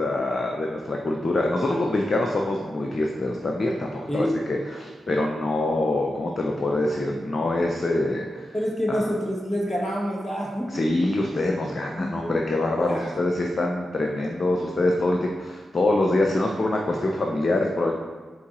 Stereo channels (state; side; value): normal; both; correlation 0.90